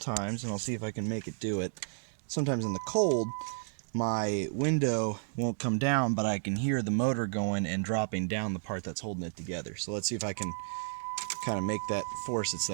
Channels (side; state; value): left; silent; digital silence